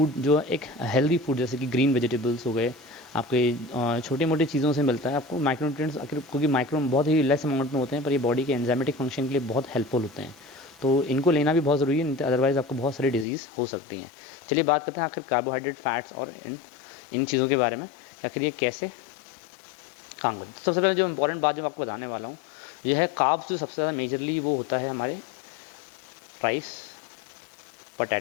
जो एक हेल्दी फूड जैसे कि ग्रीन वेजिटेबल्स हो गए, आपके छोटे मोटे चीज़ों से मिलता है आपको माइक्रोन्यूट्रिएंट्स। आखिर क्योंकि माइक्रो बहुत ही लेस अमाउंट में होते हैं, पर ये बॉडी के एंजाइमेटिक फंक्शन के लिए बहुत हेल्पफुल होते हैं। तो इनको लेना भी बहुत ज़रूरी है, अदरवाइज़ आपको बहुत सारी डिजीज़ हो सकती हैं। चलिए बात करते हैं आखिर कार्बोहाइड्रेट, फैट्स और इन चीज़ों के बारे में, आखिर ये कैसे काम करते हैं। सबसे पहले जो इंपॉर्टेंट बात जो मैं आपको बताने वाला हूँ यह है कार्ब्स। जो सबसे ज़्यादा मेजरली वो होता है हमारे राइस,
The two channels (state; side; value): drops out; right; at 13.2 s